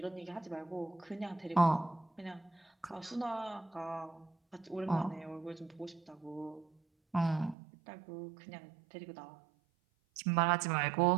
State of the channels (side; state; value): left; drops out; at 7.6 s